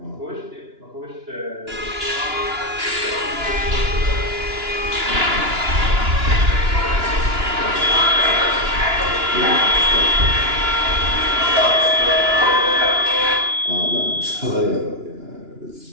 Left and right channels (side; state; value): left; late; 2.9 ms